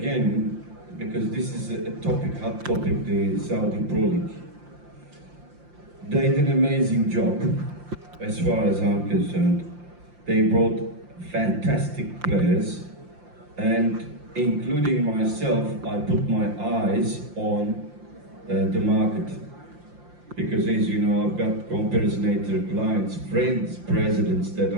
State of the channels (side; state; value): left; late; 5.7 ms